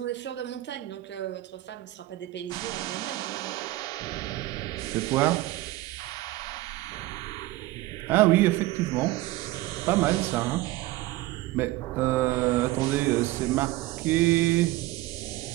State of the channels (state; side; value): quieter; left; 17.8 dB